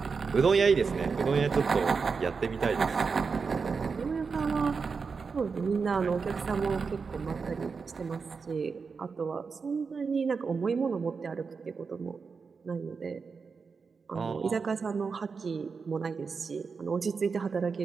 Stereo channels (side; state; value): left; quieter; 5.1 dB